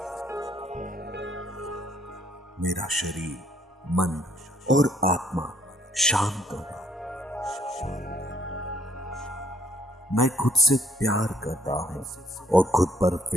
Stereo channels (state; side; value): normal; both; correlation 0.65